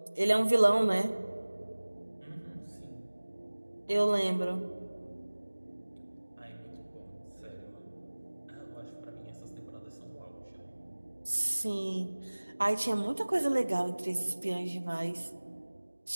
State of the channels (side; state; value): both; inverted; correlation -1.00